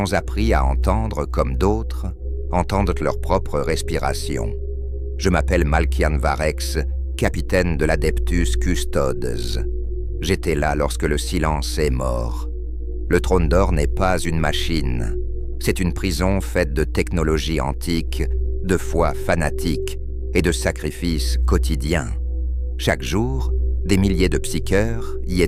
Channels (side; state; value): both; identical; correlation 1.00